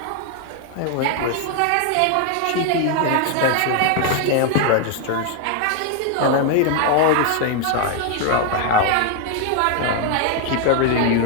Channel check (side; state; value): both; different; correlation 0.01